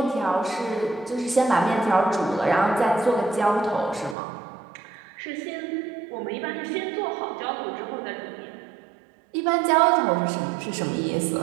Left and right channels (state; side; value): drops out; left; at 4.2 s